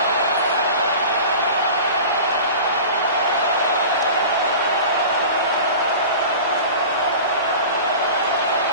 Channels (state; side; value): inverted; both; correlation -0.37